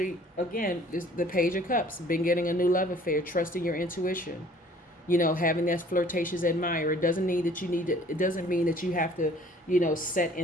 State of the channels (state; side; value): normal; both; correlation 0.54